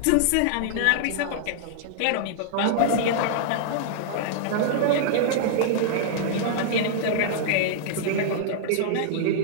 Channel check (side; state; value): both; different; correlation -0.02